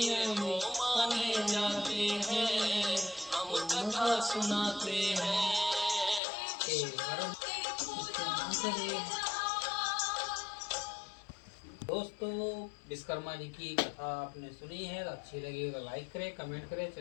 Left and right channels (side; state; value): right; drops out; at 6.2 s